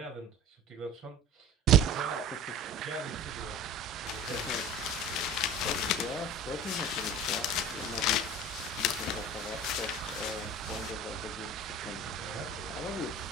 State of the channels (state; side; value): normal; both; correlation 0.39